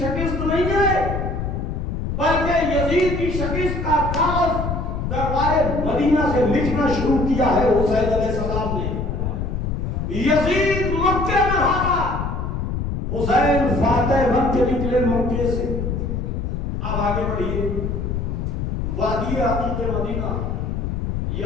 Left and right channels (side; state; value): left; noise; rumble, 2 dB below the sound